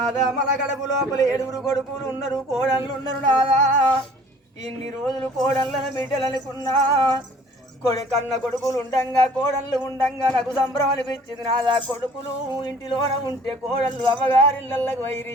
మన గడపు లోపల 7 కొడుకులు ఉన్నారు కోడళ్ళు ఉన్నారు నాదా ఇన్ని రోజులు కోడళ్ళను బిడ్డలనుకున్నా కన్న కొడుకులు ఉండంగా కోడళ్ళు ఉండంగా నాకు సంబరం అనిపించింది నాదా కొడుకులు ఇంటిలోన ఉంటే కోడళ్ళు అమ్మగారిళ్ళకు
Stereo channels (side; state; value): both; normal; correlation 0.52